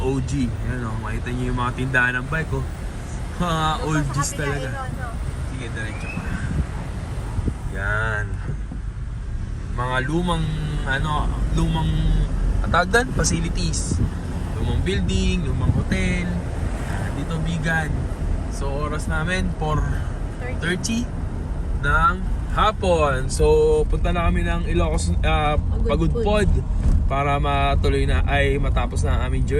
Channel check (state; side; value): identical; both; correlation 1.00